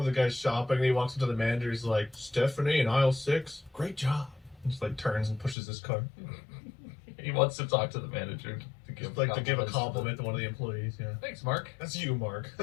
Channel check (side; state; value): right; drops out; at 5.6 s